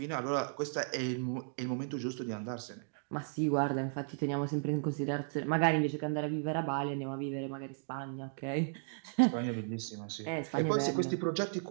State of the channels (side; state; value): left; silent; digital silence